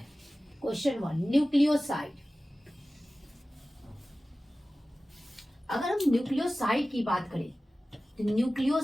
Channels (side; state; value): both; normal; correlation 0.96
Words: Question 1, nucleoside. अगर हम न्यूक्लियोसाइड की बात करें तो